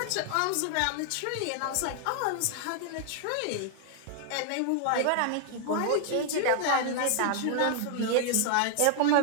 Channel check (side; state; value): both; different; correlation 0.00